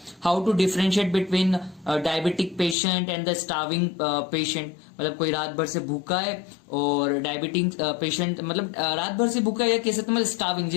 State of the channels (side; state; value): right; drops out; at 2.8 s